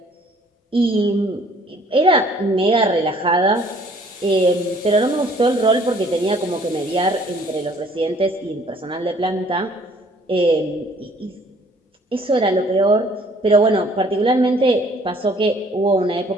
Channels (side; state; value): both; normal; correlation 0.58